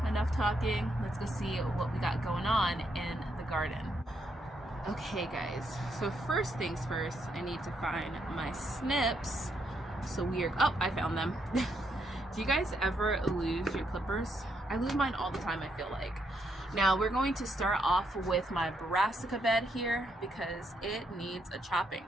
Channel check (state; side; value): normal; both; correlation 0.77